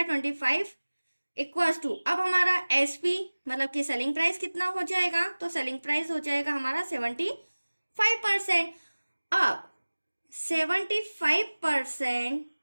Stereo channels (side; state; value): both; inverted; correlation -1.00